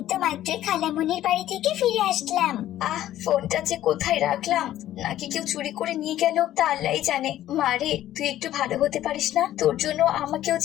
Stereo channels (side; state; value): right; quieter; 13.1 dB